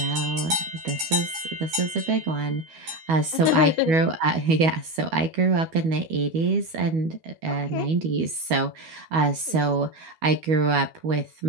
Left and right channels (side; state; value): left; late; 12 ms